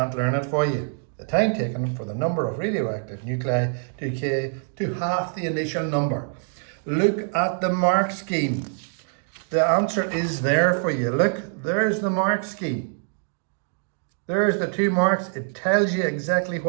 learn it for you. The time taken for the number of radioactive nuclei to decay to half the initial number. Look at the mark scheme. The answer is there for you. Look, there's the mark scheme. There's the 2 marks. It tells you exactly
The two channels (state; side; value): silent; left; 56 dB below the other